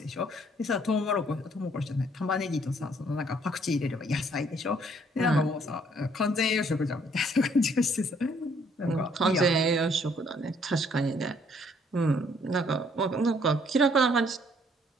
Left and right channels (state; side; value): normal; both; correlation 0.64